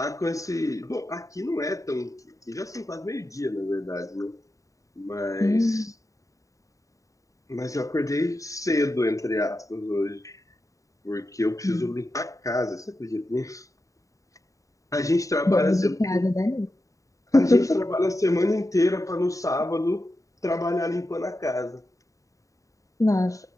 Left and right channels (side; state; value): right; late; 0.16 ms